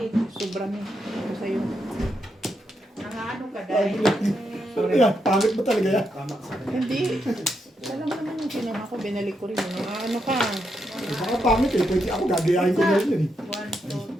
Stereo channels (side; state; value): both; normal; correlation 0.82